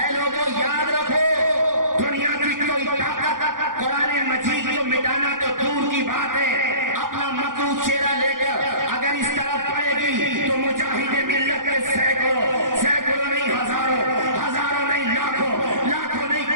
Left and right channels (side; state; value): left; late; 0.89 ms